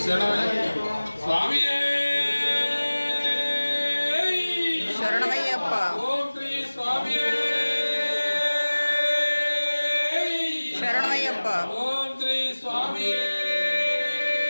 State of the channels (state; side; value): inverted; both; correlation -1.00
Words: స్వామి శరణమయ్యప్ప. ఓం శ్రీ స్వామి శరణమయ్యప్ప. ఓం శ్రీ స్వామి